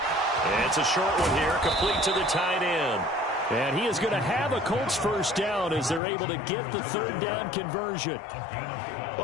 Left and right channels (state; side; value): drops out; right; at 6.0 s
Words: It's a short one here, complete to the tight end. And he is going to have a Colts first down as they're able to get the 3rd down conversion.